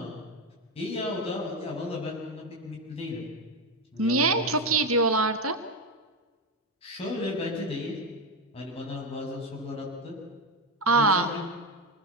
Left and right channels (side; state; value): both; normal; correlation 0.12